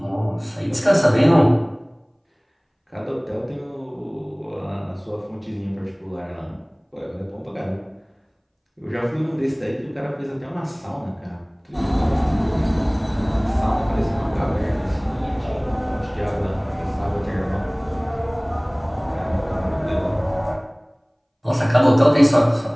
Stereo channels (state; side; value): identical; both; correlation 1.00